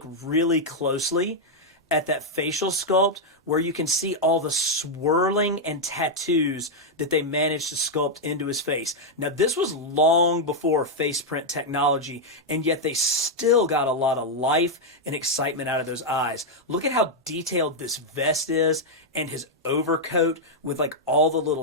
really closely at that facial sculpt where you can see all the swirling and tattoos that they managed to sculpt into his face. Now, this was long before face print technology, and yet they still got a lot of life and excitement out of those eyes. Look at how detailed this vest is and his overcoat with like all the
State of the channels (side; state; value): both; normal; correlation -0.01